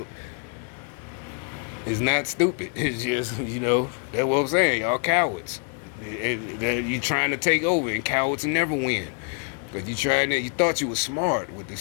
it's not stupid. It's just, you know, that's what I'm saying. Y'all cowards. You trying to take over, and cowards never win. Because you thought you was smart with the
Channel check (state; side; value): quieter; right; 39.2 dB